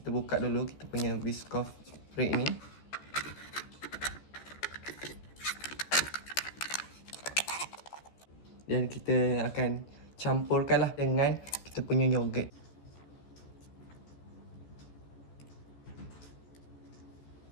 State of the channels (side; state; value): right; late; 14 ms